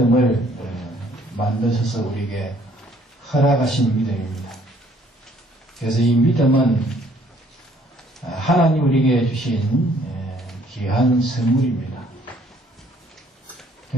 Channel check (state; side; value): normal; both; correlation 0.62